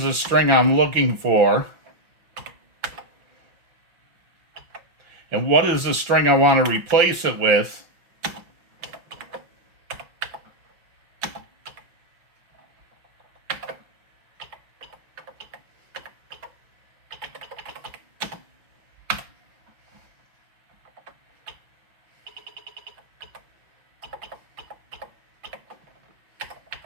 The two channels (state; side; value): late; left; 6.1 ms